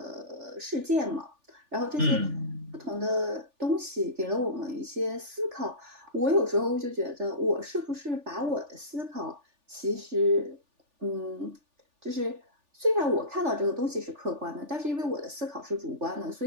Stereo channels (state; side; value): late; left; 3.4 ms